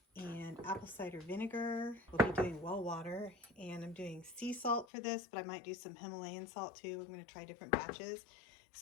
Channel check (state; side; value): drops out; right; at 4.9 s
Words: and apple cider vinegar. We'll be doing well water, and I'm doing sea salt for this, but I might do some Himalayan salt too. I'm going to try different batches.